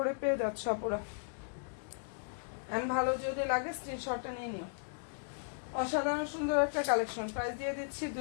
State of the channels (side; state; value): right; silent; digital silence